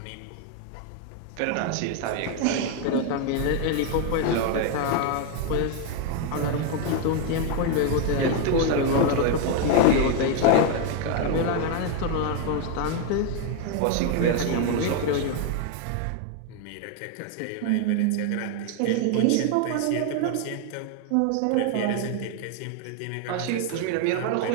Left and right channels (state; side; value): different; both; correlation 0.01